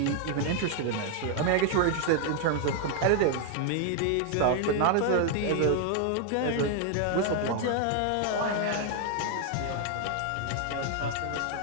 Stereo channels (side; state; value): both; different; correlation 0.00